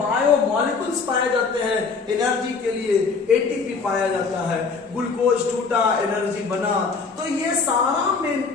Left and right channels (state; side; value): quieter; right; 4.8 dB